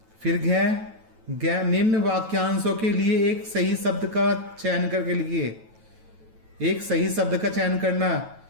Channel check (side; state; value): left; late; 9.2 ms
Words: फिर घ निम्न वाक्यांशों के लिए एक सही शब्द का चयन करके लिखिए। एक सही शब्द का चयन करना।